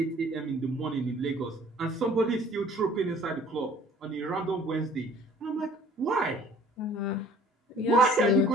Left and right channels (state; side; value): normal; both; correlation 0.53